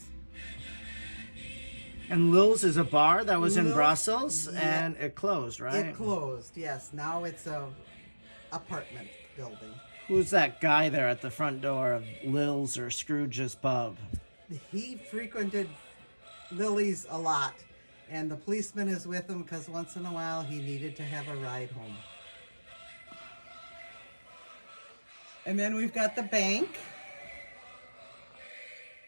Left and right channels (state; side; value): inverted; both; correlation -1.00